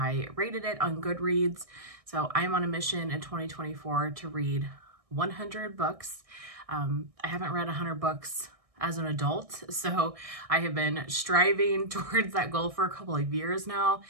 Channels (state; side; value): late; left; 1.6 ms